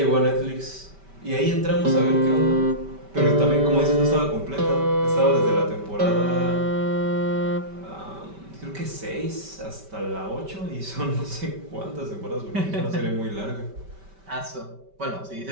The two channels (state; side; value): late; left; 5.1 ms